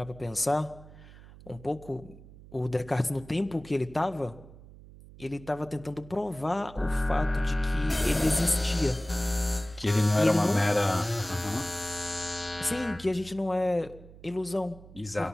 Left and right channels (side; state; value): right; noise; hum, 19 dB below the sound